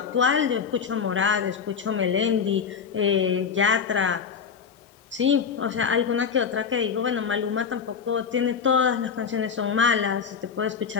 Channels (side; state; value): right; quieter; 6.5 dB